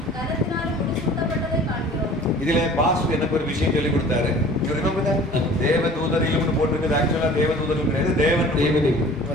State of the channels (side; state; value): both; normal; correlation 0.46